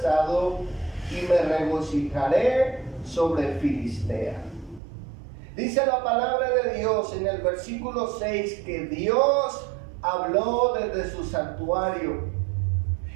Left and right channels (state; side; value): drops out; left; at 4.8 s